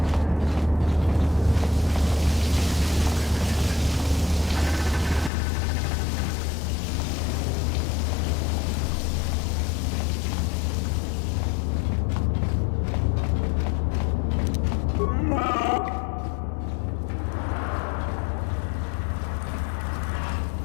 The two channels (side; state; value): right; drops out; at 5.3 s